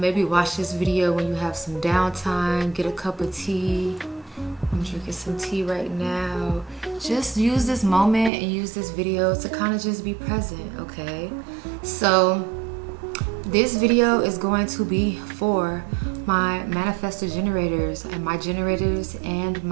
watch this video when you have some downtime. Get a cup of tea. I'm drinking some tea right now. Just use this moment and use this video to kind of just be present, okay? So this video is going to be for my manifestor generators and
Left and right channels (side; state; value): left; drops out; at 8.3 s